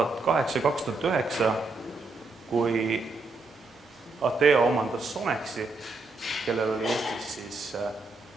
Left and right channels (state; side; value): quieter; left; 3.4 dB